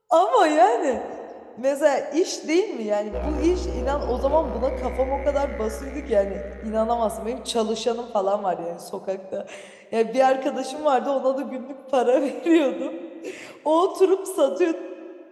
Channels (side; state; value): both; identical; correlation 1.00